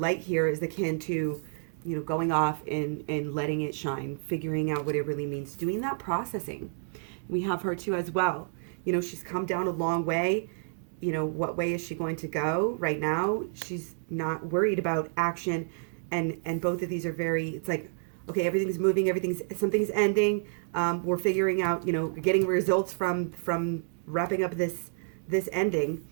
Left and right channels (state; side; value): silent; left; digital silence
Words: here is akin to going off and letting it shine, figuring out what it really means, doing that processing. We have her too as well. She's come down a long way. What way is she going to go right now? She's not worried about action. And both of these are it's like, okay, everything's moving, something's ending. We're figuring out, getting results from wrapping up this ending.